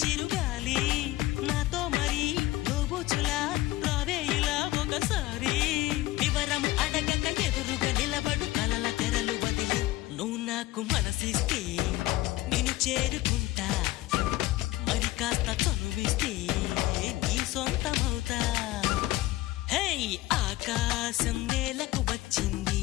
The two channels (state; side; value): quieter; right; 17.6 dB